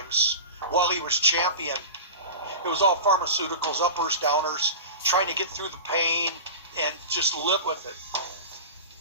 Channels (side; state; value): both; inverted; correlation -0.30